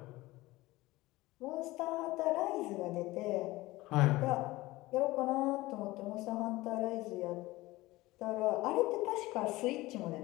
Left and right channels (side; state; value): right; quieter; 19.2 dB